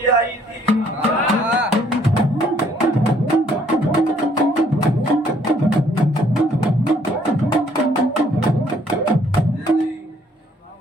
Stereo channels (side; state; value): both; normal; correlation 0.64